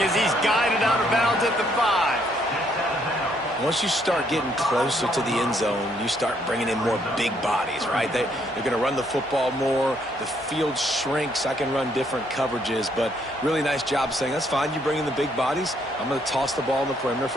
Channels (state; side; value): normal; both; correlation 0.70